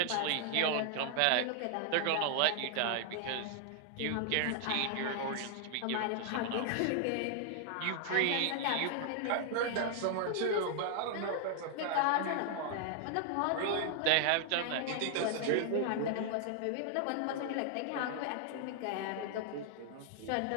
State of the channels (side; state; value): both; different; correlation 0.00